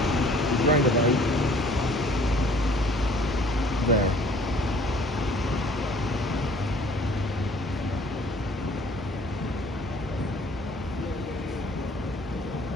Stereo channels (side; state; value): both; normal; correlation 0.54